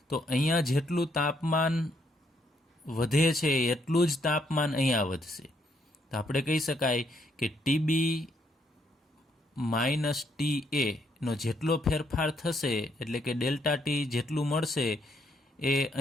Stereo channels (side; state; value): both; normal; correlation 0.73